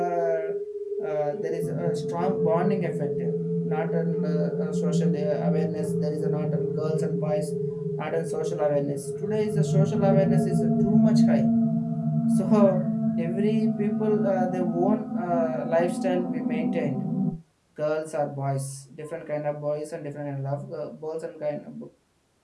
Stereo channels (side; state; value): both; identical; correlation 1.00